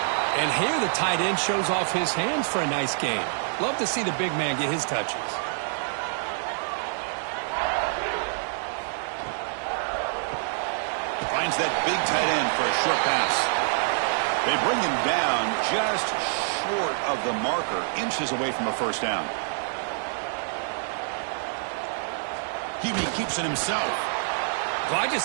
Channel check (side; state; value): left; silent; 60 dB below the other